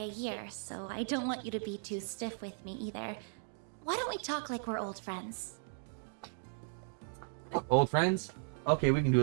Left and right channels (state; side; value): silent; left; digital silence